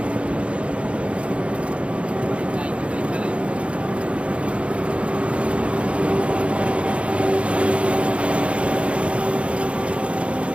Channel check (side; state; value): left; late; 0.060 ms